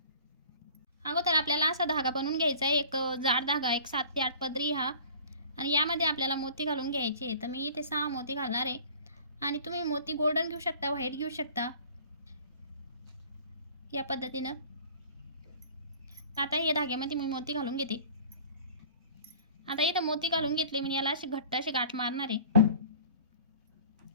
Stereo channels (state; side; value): inverted; both; correlation -0.46